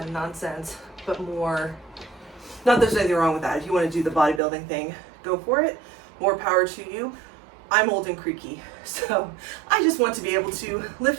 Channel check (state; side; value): drops out; left; at 4.4 s